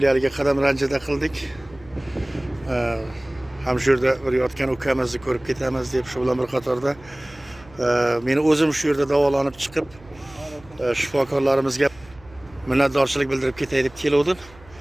qadam ranjida qildik. Ham shu yerda bir yotgan ukamizni ko'rib ketamiz deb shu bilan bir qatorda meni o'zim shu yerda davolanib chiqib shifokorlarimizga minnatdorchilik bildirib ketay deb keldim.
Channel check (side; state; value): right; noise; hum, 24 dB below the sound